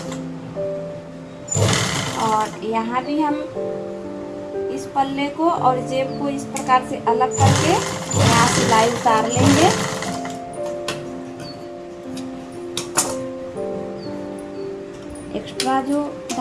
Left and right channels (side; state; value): both; identical; correlation 1.00